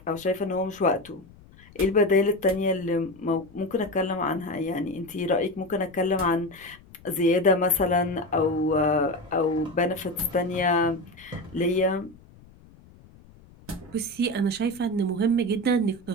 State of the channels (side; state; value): left; noise; rumble, 24 dB below the sound